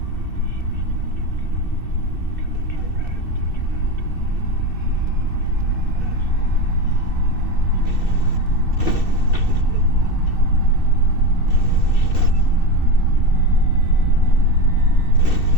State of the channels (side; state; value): right; late; 2.6 ms